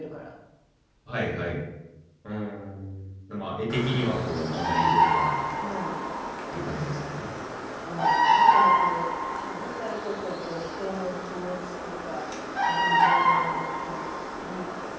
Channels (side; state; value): both; identical; correlation 1.00